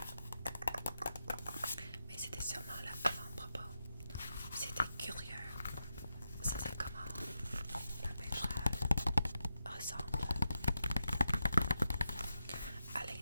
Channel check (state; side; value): inverted; both; correlation -0.86